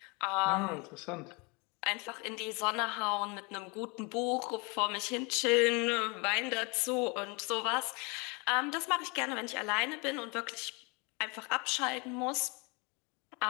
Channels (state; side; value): quieter; right; 30.2 dB